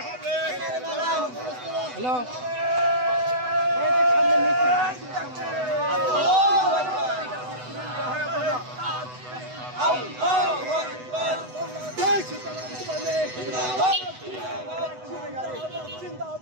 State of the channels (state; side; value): late; left; 8.0 ms